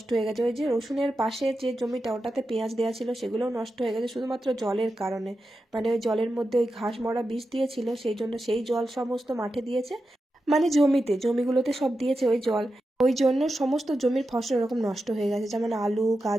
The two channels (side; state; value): both; normal; correlation 0.90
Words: হয়ে গেছে। ওই যে রসুনের পাশে যে জমিটা, ওটাতে পেঁয়াজ দেওয়া ছিল, সেগুলোও নষ্ট হয়ে গেছে শুধুমাত্র জলের কারণে, মানে ওই জলের মধ্যে ওই ঘাস মরা বিষ দিয়েছিল, সেই জন্য সেই জল সমস্ত মাঠে দিয়েছে, মানে জমিগুলোতে সব দিয়েছে ওই জল, ওই জন্য সমস্ত জমির ফসল এরকম নষ্ট হয়ে গেছে, যেমন আলু